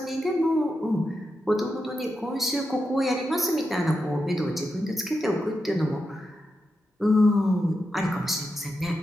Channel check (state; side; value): normal; both; correlation 0.87